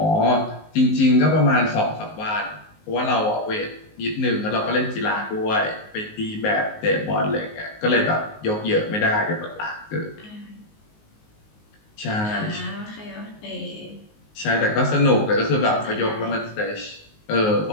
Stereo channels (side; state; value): right; late; 19 ms